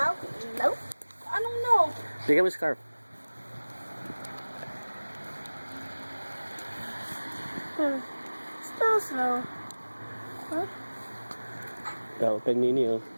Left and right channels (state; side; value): inverted; both; correlation -1.00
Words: No. Anong no? Bigyan mo scarf. Still snow. Kay Nini, oh.